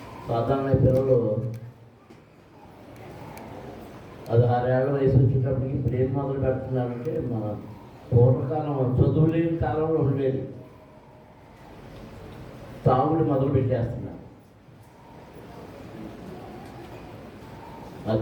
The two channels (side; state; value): both; identical; correlation 1.00